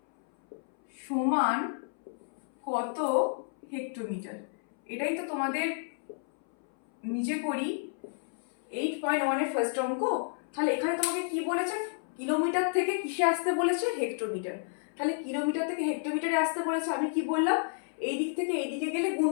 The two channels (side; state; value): right; silent; 57 dB below the other